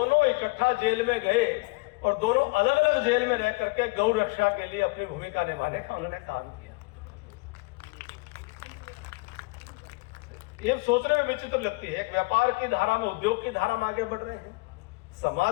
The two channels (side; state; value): right; quieter; 26.8 dB